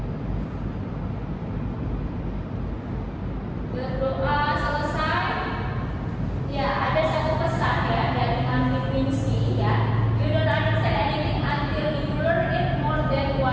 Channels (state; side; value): identical; both; correlation 1.00